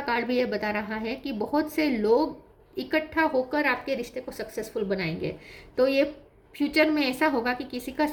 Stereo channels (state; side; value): identical; both; correlation 1.00